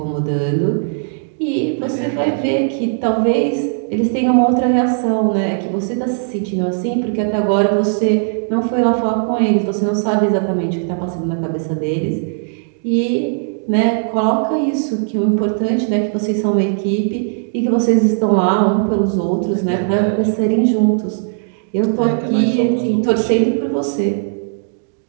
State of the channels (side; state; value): left; silent; digital silence